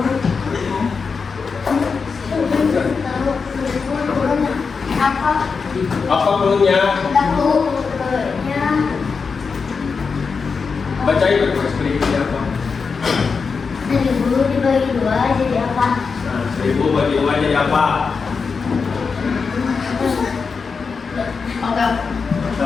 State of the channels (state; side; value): quieter; right; 5.2 dB